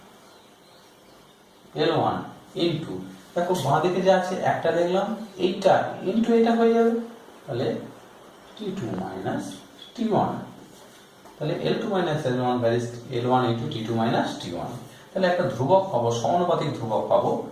L1 into, দেখো বাঁ দিকে যা আছে একটা দেখলাম, এইটা ইন্টু এটা হয়ে যাবে, তাহলে T2 মাইনাস T1, তাহলে L2 minus L1 varies L1 into T2 minus T1। তাহলে একটা ধ্রুবক পাবো, সমানুপাতিক ধ্রুবক পাবো,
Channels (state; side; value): identical; both; correlation 1.00